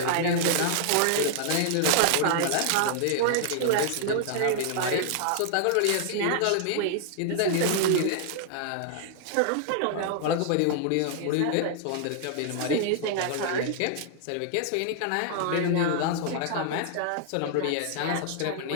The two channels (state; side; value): different; both; correlation 0.00